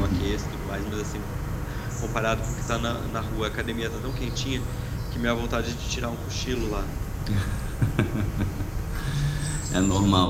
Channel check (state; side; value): identical; both; correlation 1.00